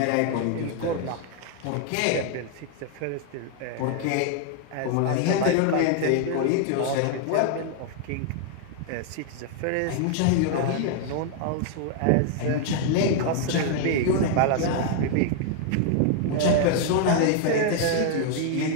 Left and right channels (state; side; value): different; both; correlation 0.00